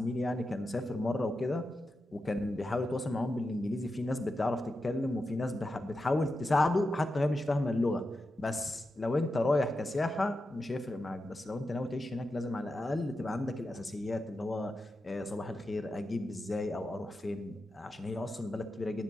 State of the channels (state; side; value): normal; both; correlation 0.89